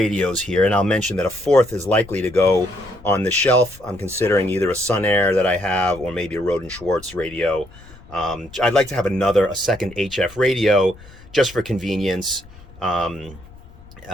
here, and I'll mention that a 4th is likely to go on the shelf. I'm considering either a Sun Air that I have or maybe a Roden Schwartz radio. I'd like to have a second HF radio just for convenience, you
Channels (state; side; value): noise; left; rumble, 21 dB below the sound